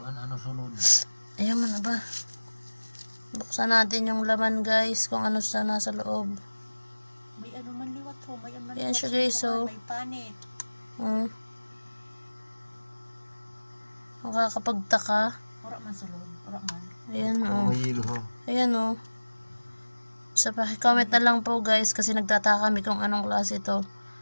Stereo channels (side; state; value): both; inverted; correlation -1.00